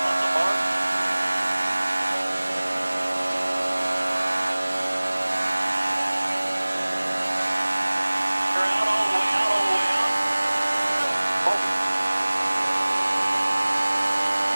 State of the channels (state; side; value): inverted; both; correlation -1.00